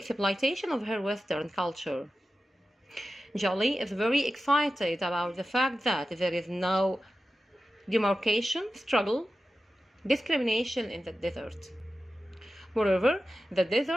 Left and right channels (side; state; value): both; normal; correlation 0.93